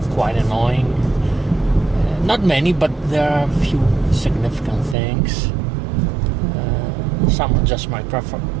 quite annoying. Not many, but there are a few significant things. Some are just my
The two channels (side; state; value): left; drops out; at 5.0 s